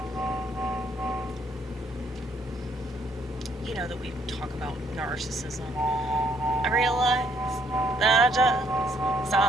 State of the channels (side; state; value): both; normal; correlation 0.67